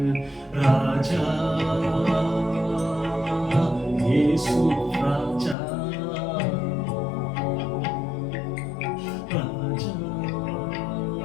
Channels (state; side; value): drops out; right; at 5.6 s